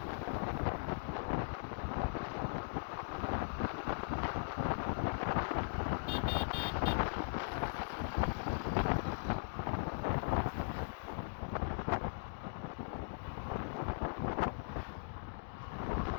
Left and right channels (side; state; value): right; silent; digital silence